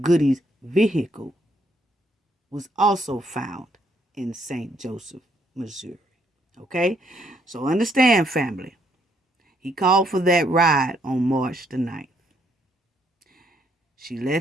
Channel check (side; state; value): both; normal; correlation 0.71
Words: Goodie's vehicle was also found in St. Joseph, Missouri. Okay? So understand, family. He called for that ride on March the 9th. She let